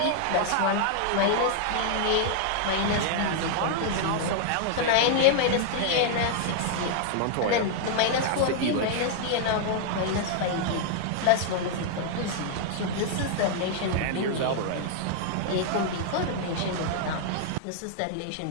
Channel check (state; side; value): different; both; correlation 0.00